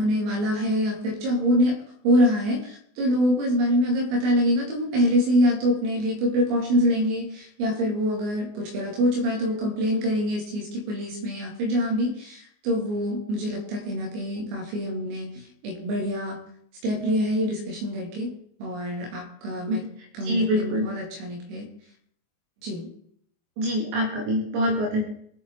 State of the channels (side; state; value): left; late; 24 ms